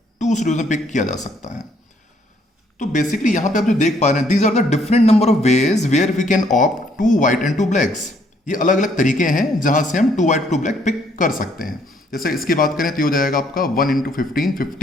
2C2 ways में पिक किया जा सकता है. तो बेसिकली यहां पे आप जो देख पा रहे हैं, these are the different number of ways where we can opt 2 white and 2 blacks. ये अलग अलग तरीके हैं जहां से हम 2 वाइट 2 ब्लैक पिक कर सकते हैं. जैसे इसकी बात करें तो ये हो जाएगा आपका 1 इंटू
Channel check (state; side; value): normal; both; correlation 0.67